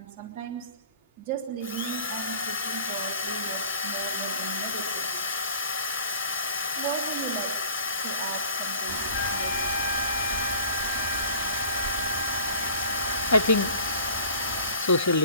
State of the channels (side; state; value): both; inverted; correlation -0.46